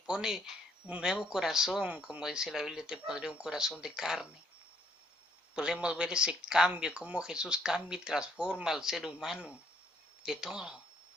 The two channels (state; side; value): normal; both; correlation 0.67